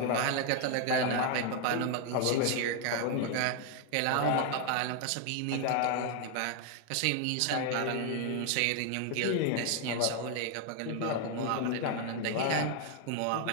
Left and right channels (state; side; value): different; both; correlation 0.00